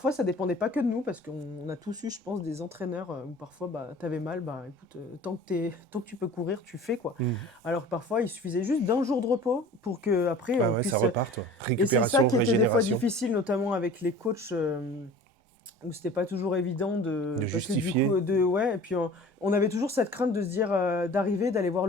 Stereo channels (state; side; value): normal; both; correlation 0.43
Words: ça dépendait pas que de nous, parce qu'on a tous eu, je pense, des entraîneurs où parfois, bah, t'avais mal, bah écoute, tant que tu peux courir, tu fais quoi. Mhm. Alors que parfois, il suffisait juste d'un jour de repos pour que après Ah on ouais, ça puisse. repart, toi. Et c'est ça Récupération, qui était des fois régénération, difficile, notamment avec les coachs. Où c'était pas toujours évident de parce que du justifier. coup ouais, et puis on avait toujours cette crainte de se dire d'arriver, d'aller voir